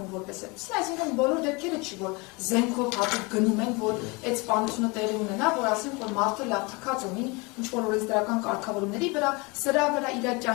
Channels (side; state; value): right; quieter; 27.4 dB